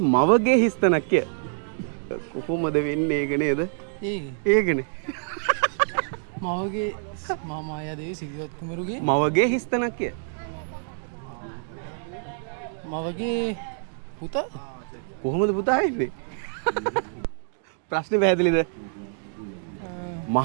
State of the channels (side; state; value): left; silent; digital silence